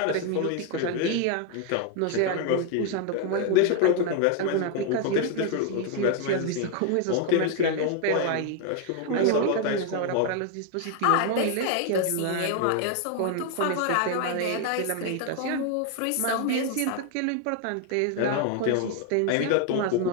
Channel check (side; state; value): both; different; correlation 0.00